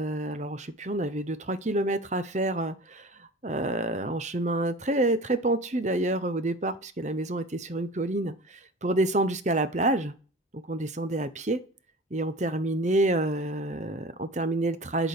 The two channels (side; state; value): both; normal; correlation 0.38